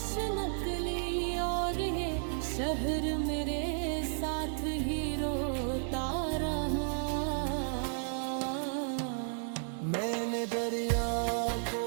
नकली, और ये शहर मेरे साथ ही रोता रहा। मैंने दरिया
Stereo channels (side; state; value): left; silent; digital silence